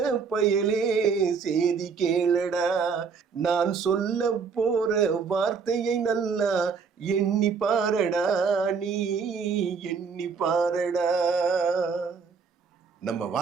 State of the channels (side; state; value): left; quieter; 5.6 dB